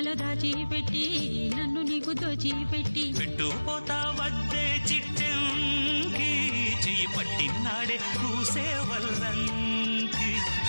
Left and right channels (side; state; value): both; inverted; correlation -1.00